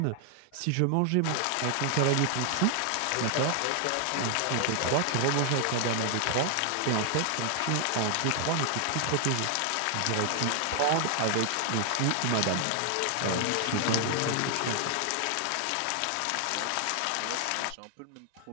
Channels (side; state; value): both; different; correlation 0.00